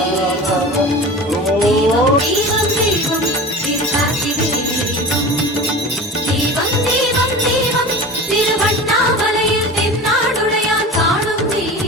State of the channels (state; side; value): normal; both; correlation 0.34